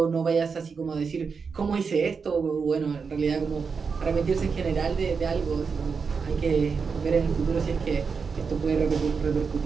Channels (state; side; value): quieter; left; 5.4 dB